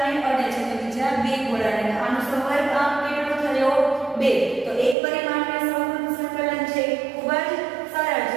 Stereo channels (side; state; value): left; drops out; at 5.0 s